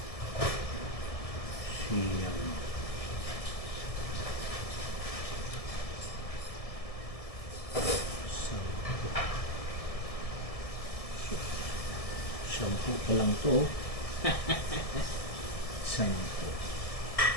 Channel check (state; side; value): late; right; 1.7 ms